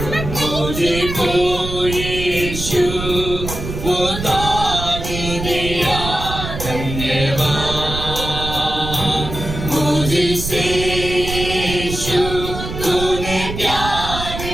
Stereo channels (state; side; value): noise; right; rumble, 7 dB below the sound